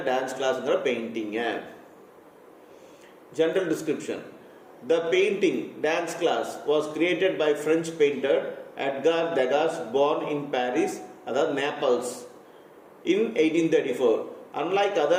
டான்ஸ் கிளாஸுங்கிற பெயிண்டிங்க. General description. The painting dance class was created by French painter Edgar Degas, born in Paris, that Naples, in 1834. Unlike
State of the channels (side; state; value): both; identical; correlation 1.00